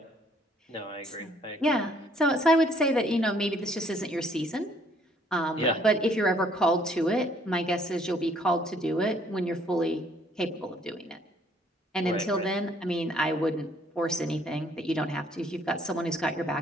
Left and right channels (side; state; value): both; normal; correlation 0.63